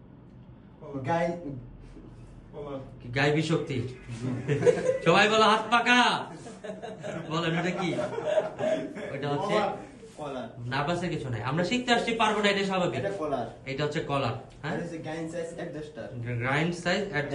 গাইবী শক্তি। সবাই বলো হাত পাকা। বলেন এটা কি? ওটা হচ্ছে নার্ভাসের কিছু নাই, আমরা শিখতে আসছি, পারবো না, এটা স্বাভাবিক। এটা হচ্ছে কলার। হ্যাঁ, গ্রাইন্ড সাইজ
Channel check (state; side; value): identical; both; correlation 1.00